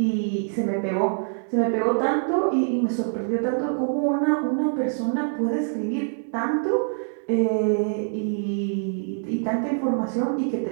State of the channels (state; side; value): silent; left; digital silence